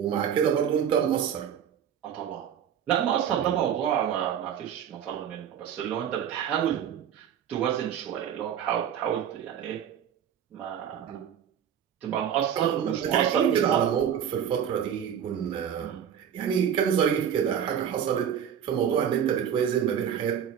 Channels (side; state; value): left; quieter; 8.9 dB